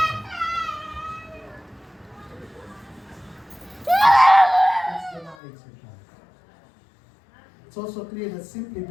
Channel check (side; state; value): right; drops out; at 5.4 s